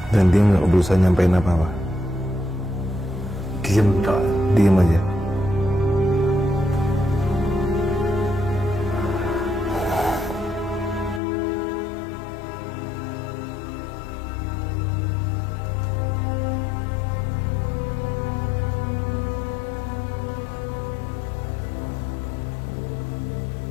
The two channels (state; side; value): drops out; right; at 11.2 s